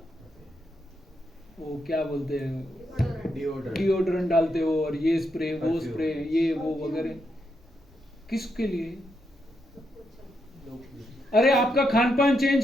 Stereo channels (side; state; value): both; normal; correlation 0.81